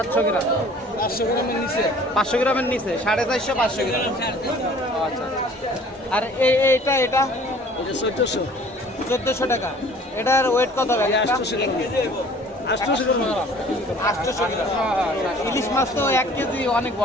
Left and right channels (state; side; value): normal; both; correlation 0.51